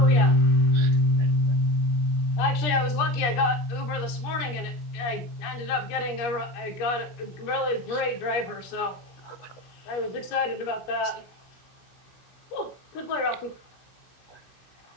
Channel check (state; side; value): late; right; 17 ms